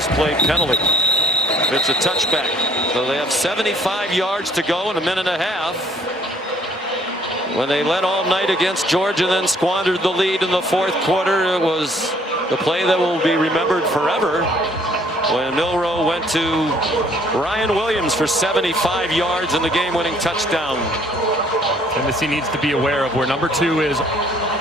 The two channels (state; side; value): normal; both; correlation 0.61